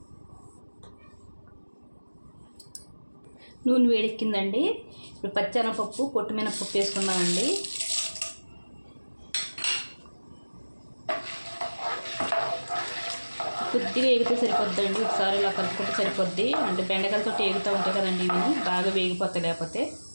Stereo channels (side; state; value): both; inverted; correlation -1.00